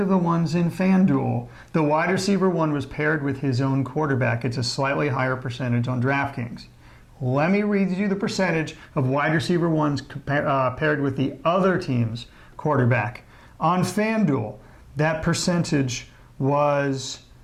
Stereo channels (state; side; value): identical; both; correlation 1.00